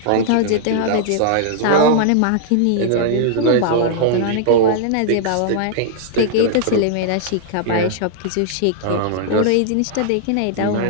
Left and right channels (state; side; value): different; both; correlation -0.01